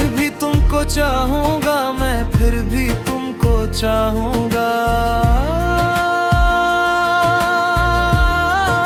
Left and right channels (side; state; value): both; identical; correlation 1.00